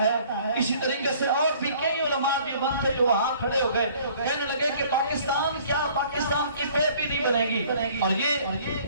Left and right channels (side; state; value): both; inverted; correlation -0.55